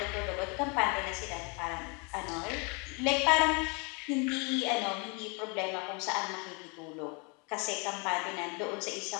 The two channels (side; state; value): right; quieter; 32.5 dB